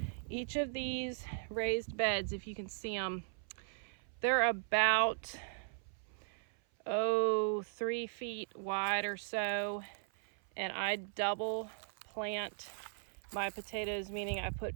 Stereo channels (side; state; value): left; silent; 52 dB below the other